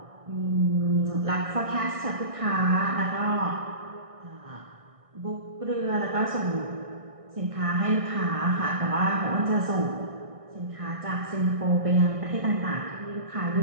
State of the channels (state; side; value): late; left; 1.6 ms